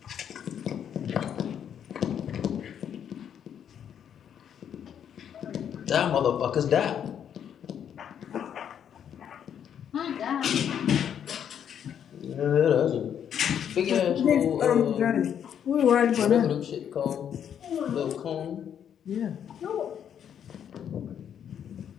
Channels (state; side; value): quieter; right; 8.9 dB